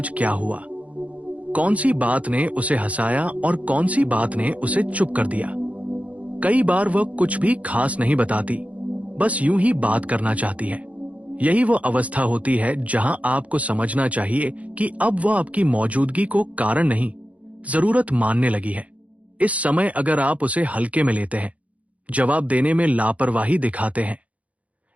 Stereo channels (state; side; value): late; left; 0.067 ms